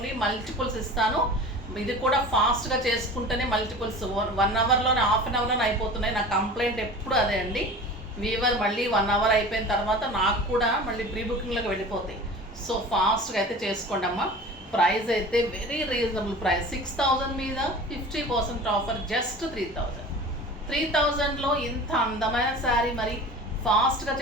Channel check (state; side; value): normal; both; correlation 0.38